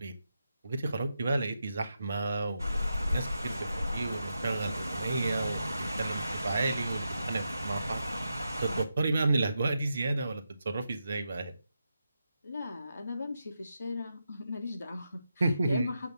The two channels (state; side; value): inverted; both; correlation -0.86